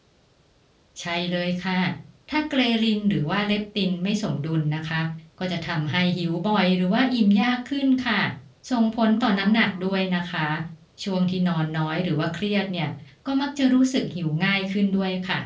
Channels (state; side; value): identical; both; correlation 1.00